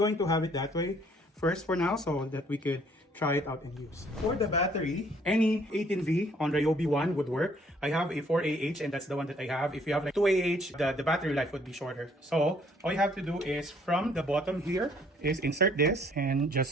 to have it that way first for now so that we could try it out and use. For the battery, any 18V on Ryobi 1 would work. I have a 4AH and that's the one that I have. If you have like 2AH, the battery life would be shorter. So all you have to do is from the bottom here is insert this and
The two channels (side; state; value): both; normal; correlation 0.62